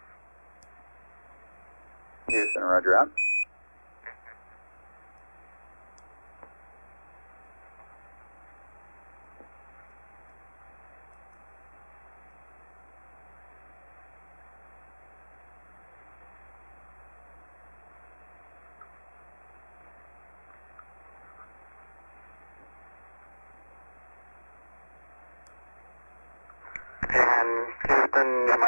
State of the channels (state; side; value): inverted; both; correlation -1.00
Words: Houston, roger out. And Houston, you